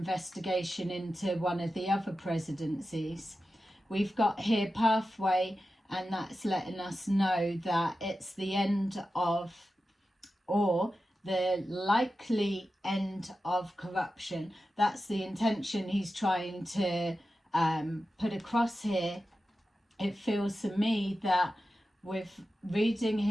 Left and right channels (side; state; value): both; normal; correlation 0.92